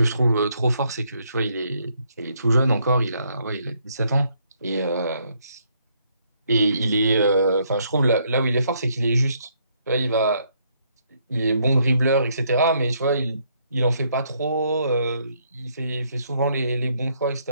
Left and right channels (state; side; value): inverted; both; correlation -0.72